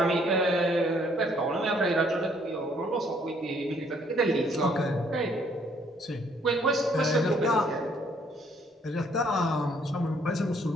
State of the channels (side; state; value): both; normal; correlation 0.65